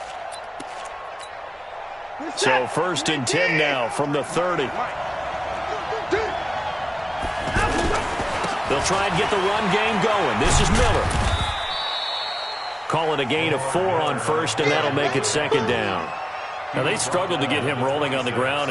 So 1st and 10 now from the 30. They'll try and get the run game going. This is Miller. Call it a gain of 4 on 1st, and that'll make it 2nd down. Now, they struggled to get him rolling on the ground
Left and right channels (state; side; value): identical; both; correlation 1.00